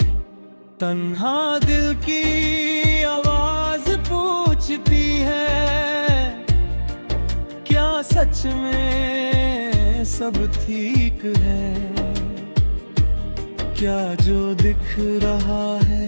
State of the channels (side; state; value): both; inverted; correlation -1.00